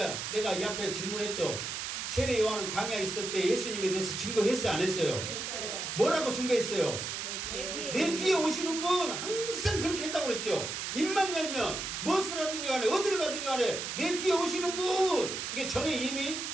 내가 이 앞에 질문했죠. 세례 요한은 광야에 있을 때 예수님에 대해서 증거했어요 안 했어요? 했어요. 뭐라고 증거했어요? 내 뒤에 오시는 분 항상 그렇게 했다고 그랬죠. 입만 열면 무엇을 하든 간에 어디를 가든 간에 내 뒤에 오시는 분 이게 전에 이미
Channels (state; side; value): noise; right; hiss, 4 dB below the sound